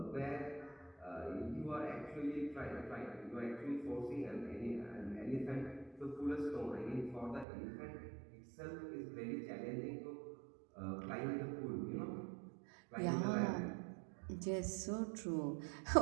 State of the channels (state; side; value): drops out; left; at 7.5 s